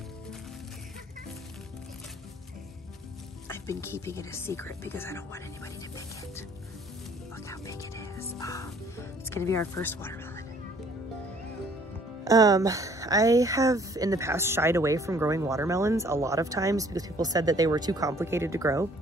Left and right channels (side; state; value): both; normal; correlation 0.59